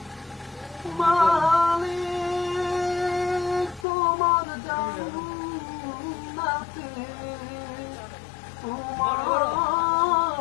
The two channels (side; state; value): right; drops out; at 3.9 s